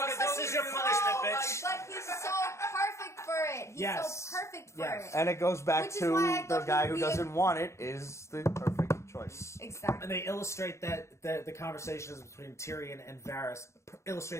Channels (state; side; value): late; right; 0.14 ms